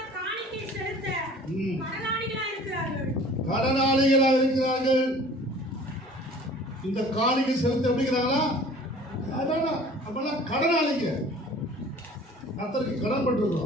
கடனாளிகளா இருக்கிறார்கள். இந்த காணிக்கை செலுத்த எப்படிங்கிறாங்களா? கடனாளிங்க, கர்த்தருக்கு கடன்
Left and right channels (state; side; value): normal; both; correlation 0.48